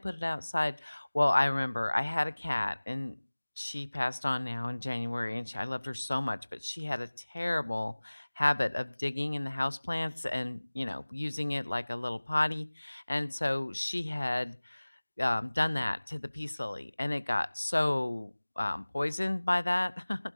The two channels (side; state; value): both; inverted; correlation -1.00